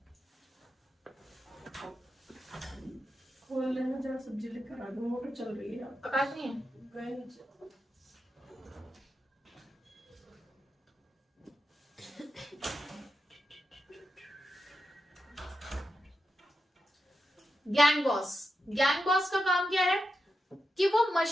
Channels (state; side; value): normal; both; correlation 0.88